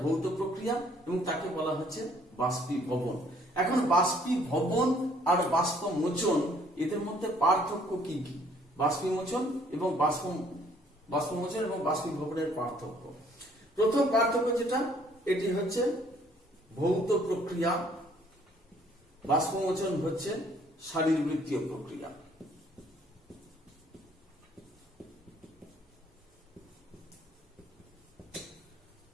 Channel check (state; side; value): normal; both; correlation 0.61